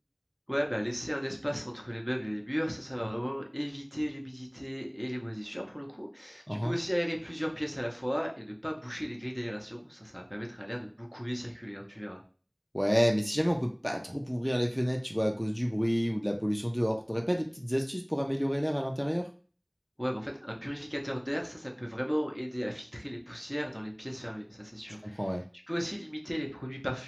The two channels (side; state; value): both; identical; correlation 1.00